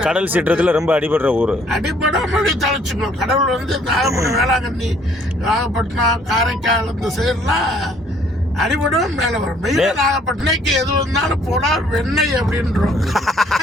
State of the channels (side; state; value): both; normal; correlation 0.61